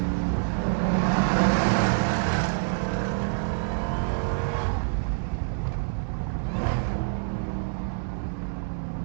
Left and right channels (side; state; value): left; silent; 60 dB below the other